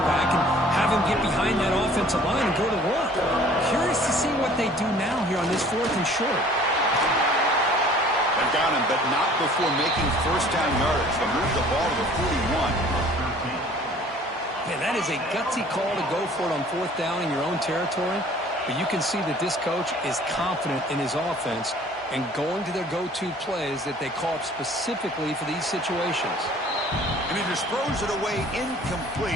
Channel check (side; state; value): both; normal; correlation 0.52